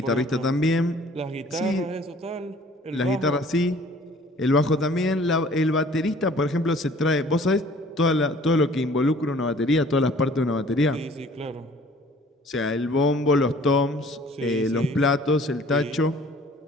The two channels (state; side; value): normal; both; correlation 0.53